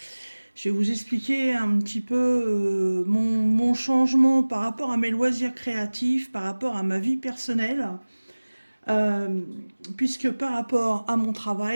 vous expliquer un petit peu mon changement par rapport à mes loisirs créatifs, par rapport à ma vie personnelle. Euh, Puisque par rapport à mon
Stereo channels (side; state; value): both; inverted; correlation -1.00